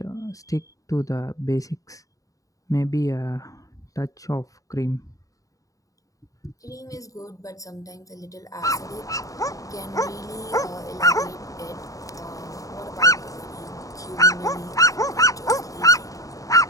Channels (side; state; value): right; late; 0.16 ms